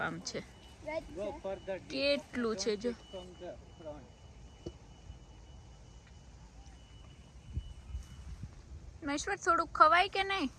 છે. કેટલું છે જો. મહેશ્વર થોડુંક ખવાય કે નહીં?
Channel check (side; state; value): both; identical; correlation 1.00